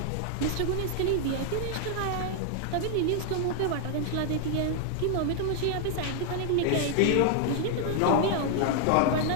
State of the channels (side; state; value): both; different; correlation 0.00